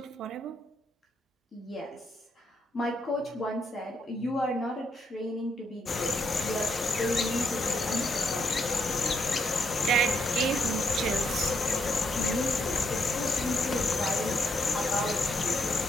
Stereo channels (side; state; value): both; normal; correlation 0.76